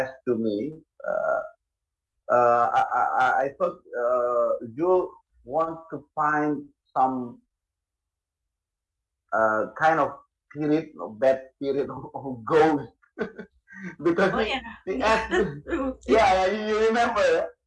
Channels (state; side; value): identical; both; correlation 1.00